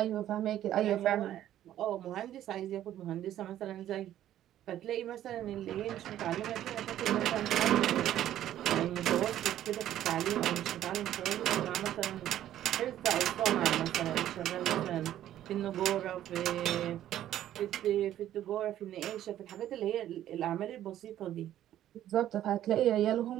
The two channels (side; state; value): left; quieter; 12.1 dB